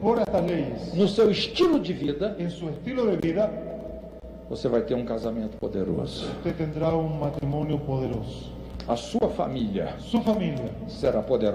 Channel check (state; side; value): identical; both; correlation 1.00